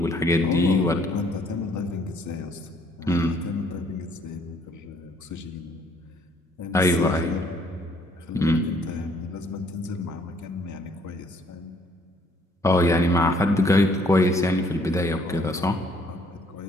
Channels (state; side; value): normal; both; correlation 0.63